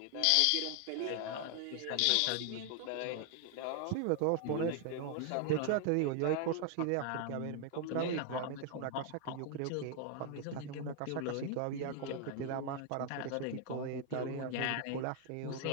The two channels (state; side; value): different; both; correlation 0.00